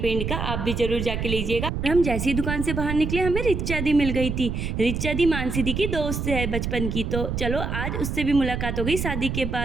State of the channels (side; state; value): right; noise; rumble, 3 dB below the sound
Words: का, आप भी जरूर जाके लीजिएगा। और हम जैसी दुकान से बाहर निकले हमें रिचा दी मिल गई थी। रिचा दी मानसी दी की दोस्त है बचपन की, तो चलो आज उससे भी मुलाकात हो गई शादी के